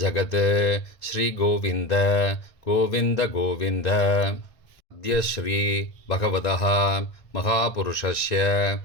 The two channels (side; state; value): right; late; 1.6 ms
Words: ஜகத். ஸ்ரீகோவிந்த கோவிந்த கோவிந்த. அத்ய ஸ்ரீ பகவதः மகாபுருஷஸ்ய